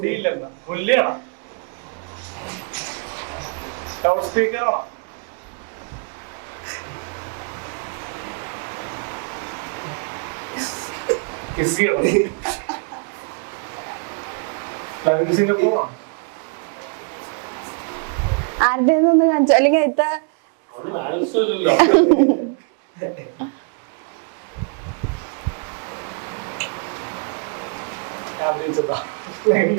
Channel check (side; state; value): left; quieter; 39.9 dB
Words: ആരുടെ ഒന്ന് കാണിച്ചു അല്ലെങ്കിൽ ഇത്ത